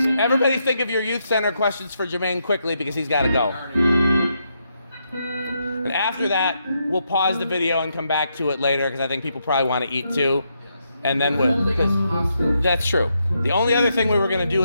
everybody think of your youth center questions for Jermaine quickly because he's got to go. And after that, we'll pause the video and come back to it later because I think people probably want to eat too. And then that's true. The only other thing we were going to do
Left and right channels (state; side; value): inverted; both; correlation -0.80